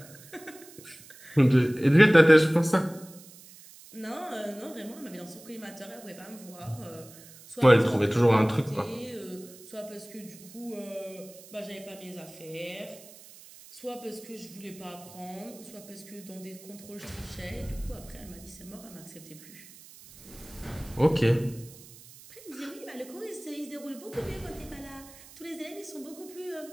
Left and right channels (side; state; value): right; noise; hiss, 20 dB below the sound